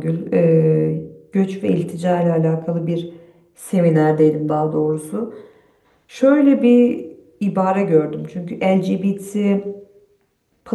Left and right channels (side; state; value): both; identical; correlation 1.00